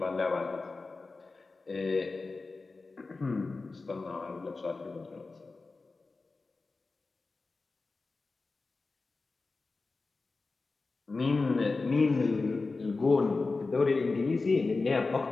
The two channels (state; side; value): quieter; right; 3.8 dB